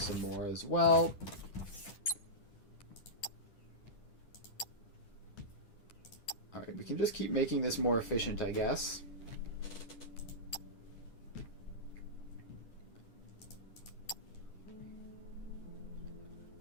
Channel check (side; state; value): right; late; 10 ms